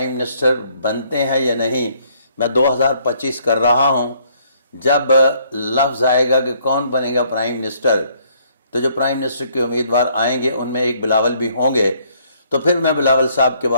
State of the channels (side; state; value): both; inverted; correlation -0.66